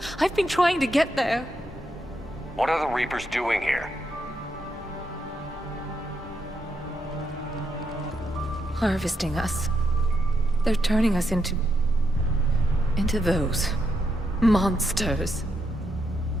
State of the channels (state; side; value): normal; both; correlation 0.81